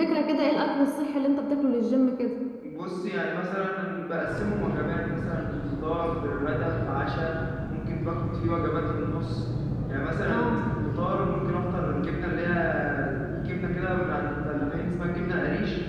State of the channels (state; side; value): identical; both; correlation 1.00